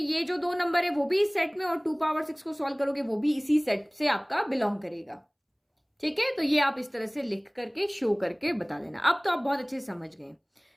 जो दो नंबर है वो भी इस सेट में, और 2 पावर 6 को सॉल्व करोगे वो भी इसी सेट से आपका बिलोंग करेगा। ठीक है, तो ये आप इस तरह से लिख करके शो करके बता देना। अब तो आप बहुत अच्छे से समझ गए।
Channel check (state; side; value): identical; both; correlation 1.00